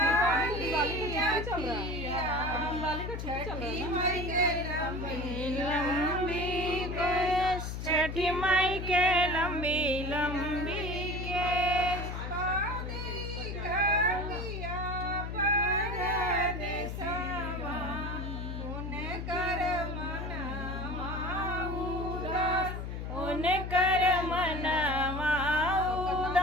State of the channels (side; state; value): left; noise; hum, 5 dB below the sound